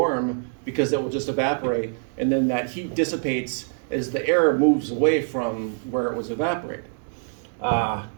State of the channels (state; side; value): silent; left; digital silence